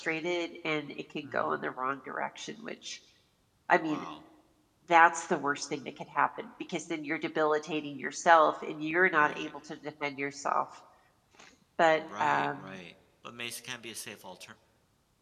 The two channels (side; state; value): both; identical; correlation 1.00